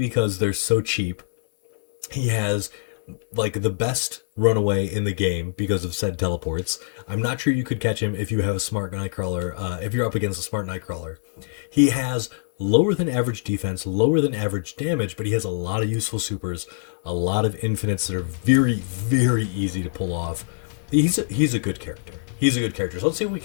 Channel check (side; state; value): right; silent; digital silence